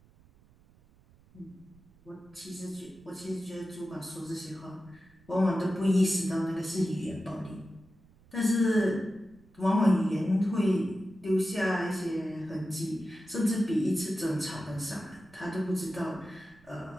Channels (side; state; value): right; noise; rumble, 28 dB below the sound